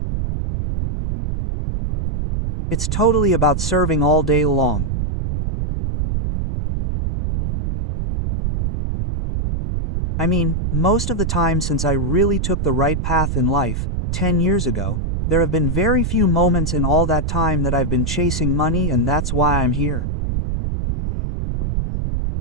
It's totally about serving all day long. I mean, most of the time since I really took the right path in life, 10 years ago, there have been very few moments in all that time that I've been chasing money, and that's why I'm here.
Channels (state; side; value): noise; right; rumble, 1 dB below the sound